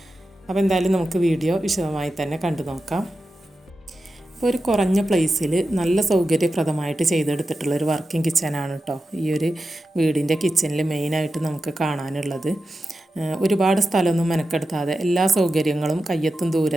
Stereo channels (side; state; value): both; normal; correlation 0.91